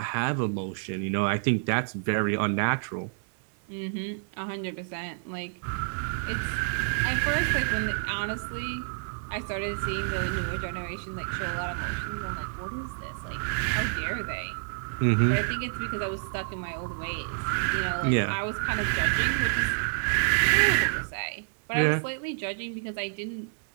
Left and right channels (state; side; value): silent; left; 59 dB below the other